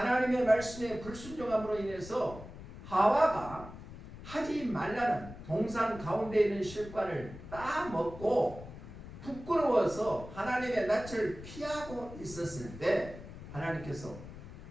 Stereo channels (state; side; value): noise; left; rumble, 14 dB below the sound